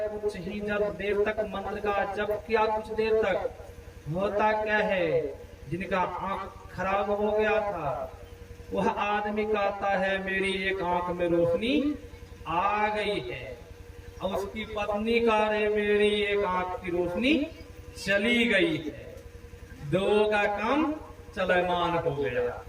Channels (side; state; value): both; identical; correlation 1.00